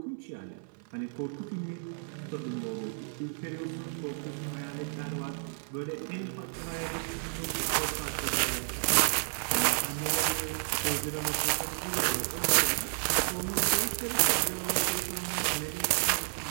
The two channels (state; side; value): silent; left; 57 dB below the other